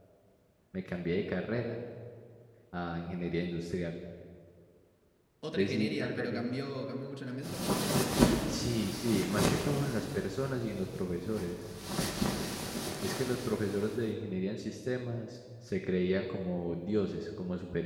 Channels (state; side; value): identical; both; correlation 1.00